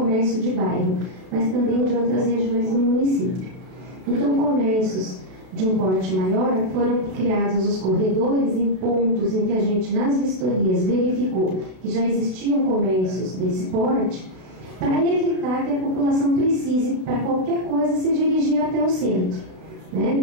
de bairro, mas também de outras regiões do município. Então, comércios de um porte maior, foram criados os corredores em pontos em que a gente, nas vistorias, verificou que já existiam comércios desse porte, para evitar que a população precise, para qualquer coisa, se dirigir até o centro.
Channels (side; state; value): left; late; 32 ms